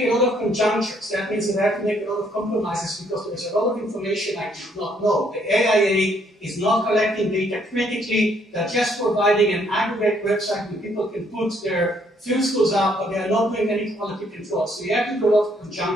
a lot of conjunctures. That means that I had to make a lot of compromises because there's a lot of information I did not know. The AIA is not collecting data critically. They're just providing an aggregate website where people can put their field schools up, but they are not doing any quality control. So you have to do a lot of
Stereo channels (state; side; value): normal; both; correlation 0.68